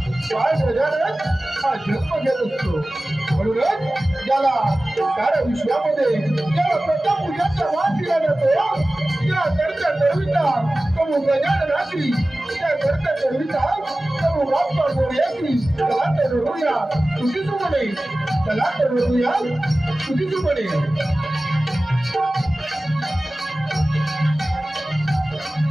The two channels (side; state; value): both; normal; correlation 0.97